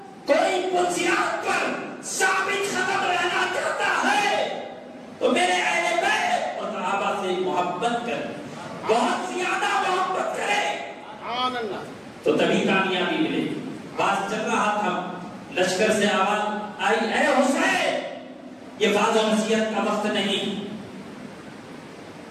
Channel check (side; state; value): both; identical; correlation 1.00